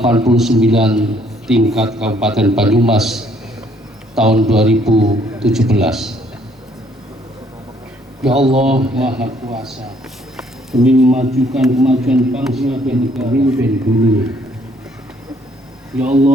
tingkat Kabupaten Banyumas tahun 2017. Ya Allah Maha Kuasa, demi memajukan kemajuan bangsa dan negara dulu. Ya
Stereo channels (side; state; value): both; normal; correlation 0.65